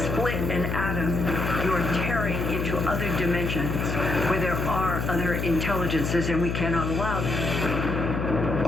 split an atom, you're tearing into other dimensions where there are other intelligences, and we cannot allow them.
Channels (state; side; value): noise; left; hum, 2 dB below the sound